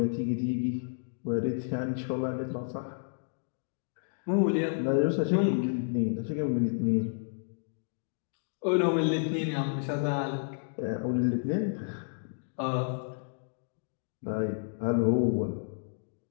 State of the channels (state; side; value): silent; right; digital silence